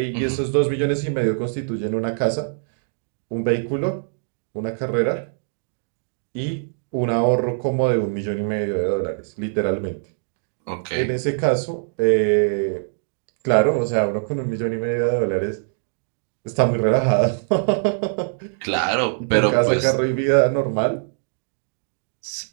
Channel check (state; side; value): silent; left; digital silence